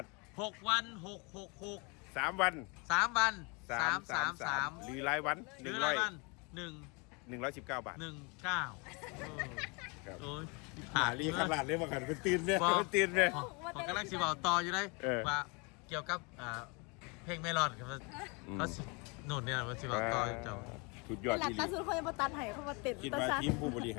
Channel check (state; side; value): quieter; right; 30.6 dB